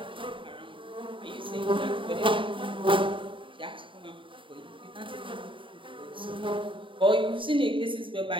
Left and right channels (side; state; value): left; late; 0.25 ms